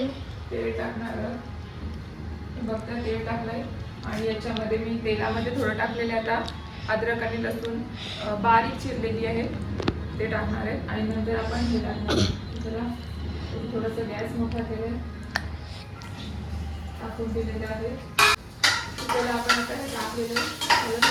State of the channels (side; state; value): both; identical; correlation 1.00